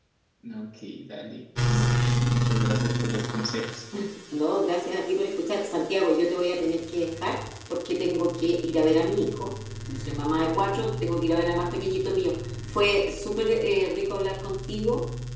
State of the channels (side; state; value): both; identical; correlation 1.00